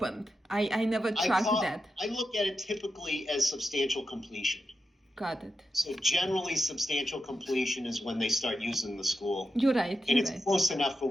I never tracked that. I look at it typically as substantial completion. Got it. So generally, substantial completion is when they start using the school, You're right. and You're it's right. close enough for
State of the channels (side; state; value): both; normal; correlation 0.88